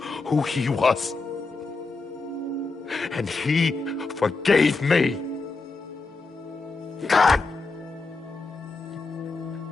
who he was. And he forgave me. God!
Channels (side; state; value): right; quieter; 3.9 dB